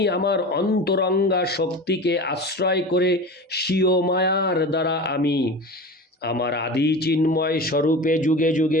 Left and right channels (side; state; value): both; normal; correlation 0.32